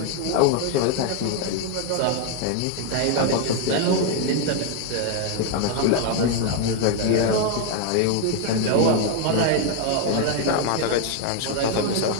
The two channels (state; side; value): different; both; correlation 0.01